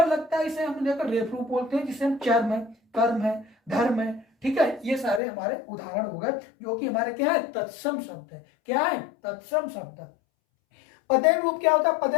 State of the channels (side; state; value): right; drops out; at 5.2 s